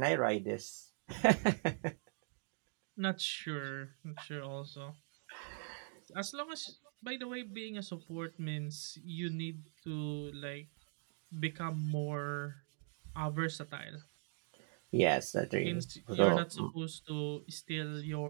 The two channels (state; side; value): silent; left; 51 dB below the other